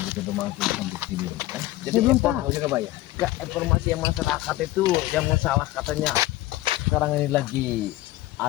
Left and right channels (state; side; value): quieter; right; 17.0 dB